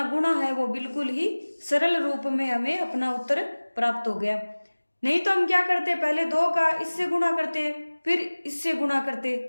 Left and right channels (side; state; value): both; inverted; correlation -1.00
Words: गुणा है वो बिल्कुल ही सरल रूप में हमें अपना उत्तर प्राप्त हो गया। नहीं तो हम क्या करते, पहले 2 का इससे गुणा करते फिर इससे गुणा करते,